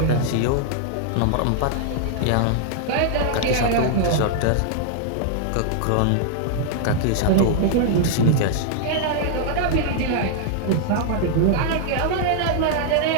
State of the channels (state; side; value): different; both; correlation 0.00